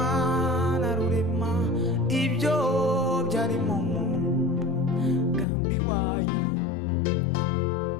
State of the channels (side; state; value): right; drops out; at 5.5 s